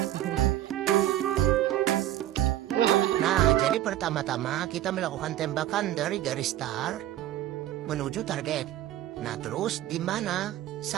Nah, jadi pertama-tama kita melakukan tembakan dari garis start menuju target. Nah, terus di mana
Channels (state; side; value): quieter; left; 13.3 dB